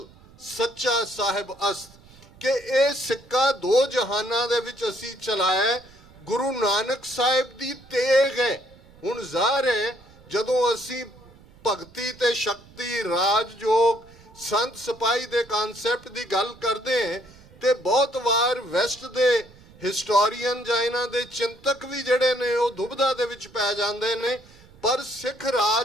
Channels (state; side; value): noise; right; rumble, 24 dB below the sound